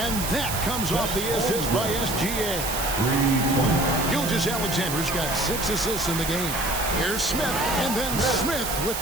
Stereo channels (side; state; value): right; noise; hiss, 4 dB below the sound